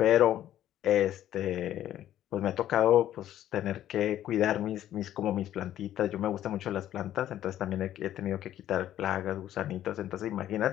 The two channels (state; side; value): quieter; right; 12.1 dB